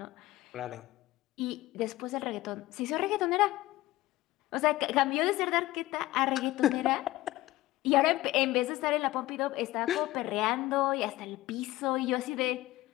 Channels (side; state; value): right; quieter; 17.2 dB